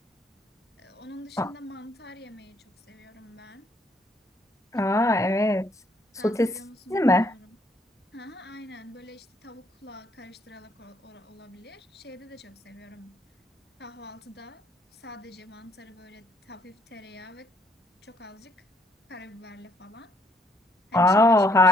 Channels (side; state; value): both; normal; correlation 0.68